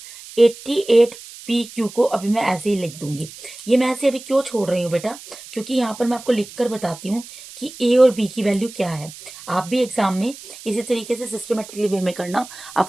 88 पी क्यू को अभी मैं ऐसे ही लिख दूंगी। ये मैं ऐसे अभी क्यों छोड़ रही हूँ बेटा? क्योंकि यहाँ पर मैं आपको लिखकर बताती हूँ कि ए और बी की वैल्यू क्या है। आप भी एग्जाम में इसी तरीके से सिस्टमेटिकली वे में करना,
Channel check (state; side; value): noise; right; hiss, 16 dB below the sound